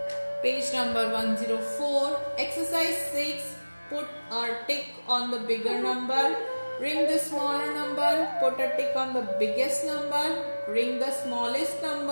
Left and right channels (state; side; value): inverted; both; correlation -1.00